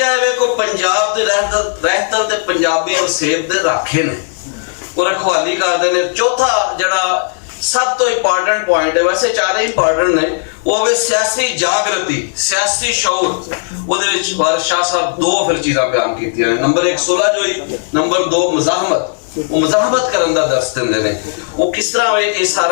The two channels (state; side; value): silent; right; digital silence